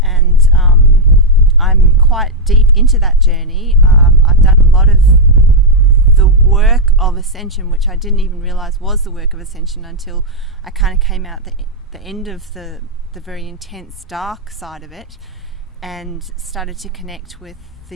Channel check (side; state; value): both; normal; correlation -0.02